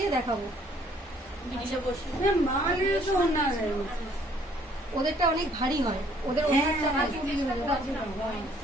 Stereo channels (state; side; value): normal; both; correlation 0.62